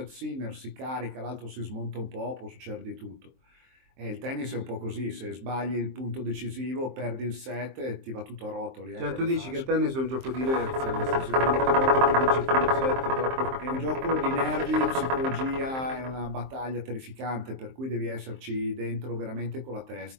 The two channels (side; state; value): left; late; 23 ms